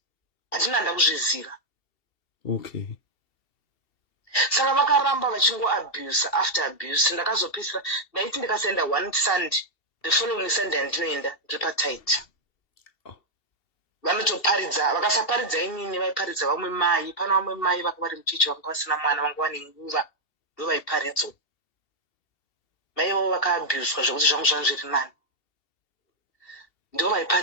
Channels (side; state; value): right; late; 2.7 ms